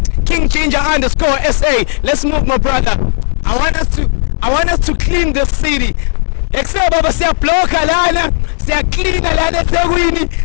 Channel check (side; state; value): right; silent; digital silence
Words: King Ginger _SA. Let's move, my brother. I want us to clean this city. Except baba siyabloka lana, siyacleana lana eThekwini,